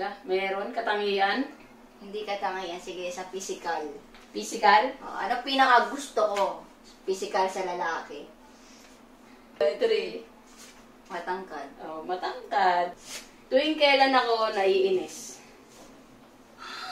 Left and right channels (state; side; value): identical; both; correlation 1.00